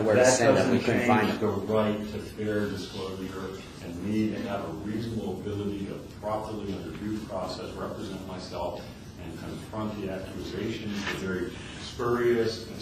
where to send them. We couldn't find them. The right to fair disclosure and me to have a reasonable ability to properly, under due process, represent myself and confront the accusations, the very spurious and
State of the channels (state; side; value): identical; both; correlation 1.00